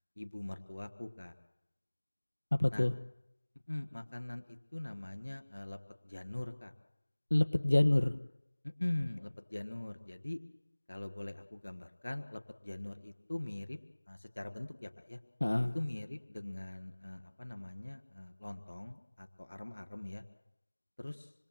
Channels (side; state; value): both; inverted; correlation -1.00